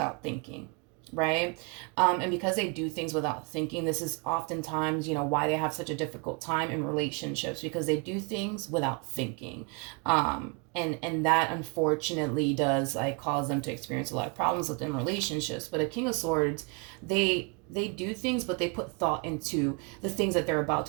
thinking, right? And because they do things without thinking, this is oftentimes, you know, why they have such a difficult time in relationships, because they do things without thinking. And that unfortunately does like cause them to experience a lot of problems within relationships. But a King of Swords, they do things, but they put thought into the things that they're about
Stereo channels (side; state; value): left; quieter; 32.0 dB